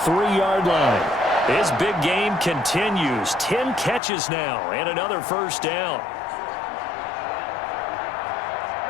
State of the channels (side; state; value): right; drops out; at 4.0 s